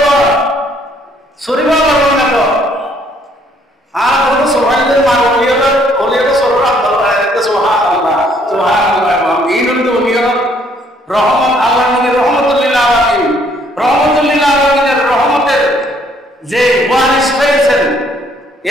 শরীর আল্লাহ বানাবো। আর কোনো সোহাইদের মা অনিয়ল শরীর আব্দাল বানাই দিতে সুবহানাল্লাহ সুবহানাল্লাহ। এই হলো অনিয়ল রহমত। আল্লাহ নবী রহমতুল্লিল আলামিন, রহমতুল্লিল আলামিনের রহমতের যে ওয়ারিস হয়েছেন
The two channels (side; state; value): both; normal; correlation 0.65